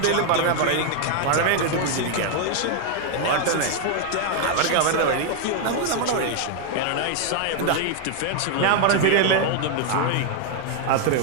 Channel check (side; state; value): both; different; correlation 0.00